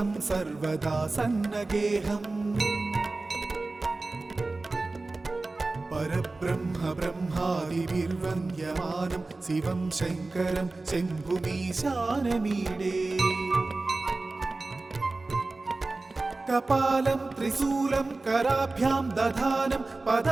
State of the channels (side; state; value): left; quieter; 3.3 dB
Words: सर्वदा सन्नगेहम् परब्रह्म ब्रह्मादिभिर्वन्द्यमानं शिवं शङ्करं शम्भुमीशानमीडे कपालं त्रिशूलं कराभ्यां दधानं